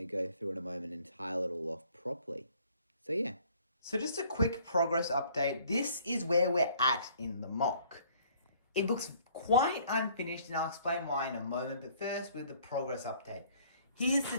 go through in a moment and tile it all off properly. So yeah. So just a quick progress update. This is where we're at in the MOC. It looks quite unfinished, and I'll explain why in a moment. But first, with the progress update. Here's the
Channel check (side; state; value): both; inverted; correlation -0.58